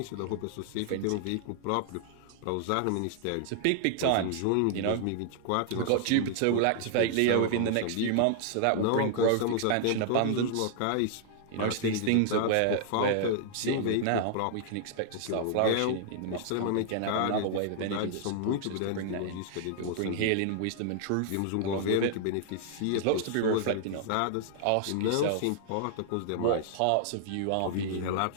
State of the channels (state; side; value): different; both; correlation -0.01